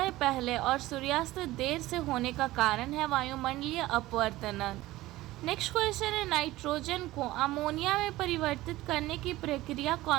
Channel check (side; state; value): left; quieter; 17.4 dB